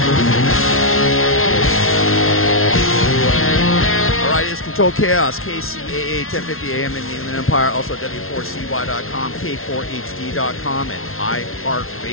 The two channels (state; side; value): late; right; 0.61 ms